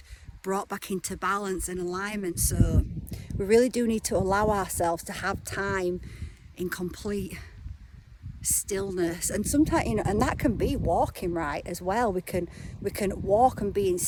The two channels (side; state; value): both; identical; correlation 1.00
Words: brought back into balance and alignment. So we really do need to allow ourselves to have time in complete stillness. And sometimes, you know, and that can be walking, right, as well. We can walk and be in